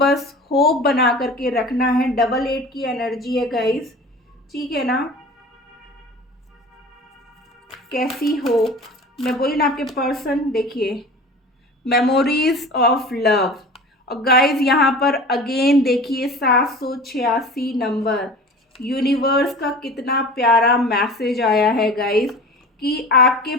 होप बना करके रखना है। डबल 8 की एनर्जी है गाइस, ठीक है ना। कैसी होप, मैं बोली ना, आपके पर्सन देखिए मेमोरीज ऑफ लव। और गाइज यहाँ पर अगेन देखिए 786 नंबर, यूनिवर्स का कितना प्यारा मैसेज आया है गाइज, कि आपके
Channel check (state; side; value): normal; both; correlation 0.38